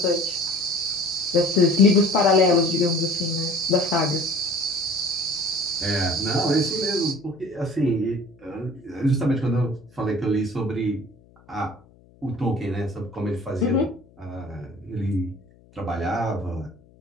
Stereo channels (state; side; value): noise; left; hum, 28 dB below the sound